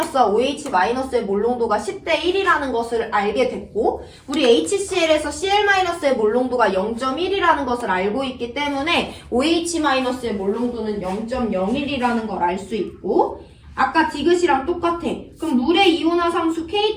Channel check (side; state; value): both; identical; correlation 1.00